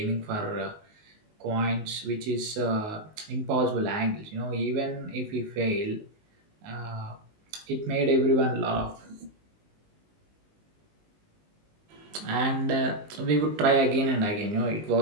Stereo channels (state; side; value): late; left; 19 ms